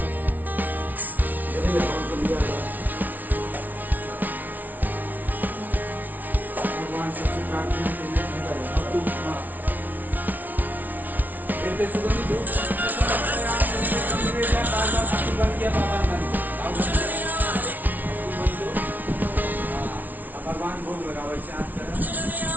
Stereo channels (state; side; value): late; left; 0.080 ms